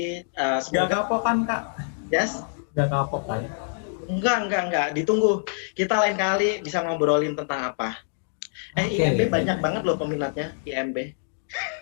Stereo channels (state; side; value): silent; right; digital silence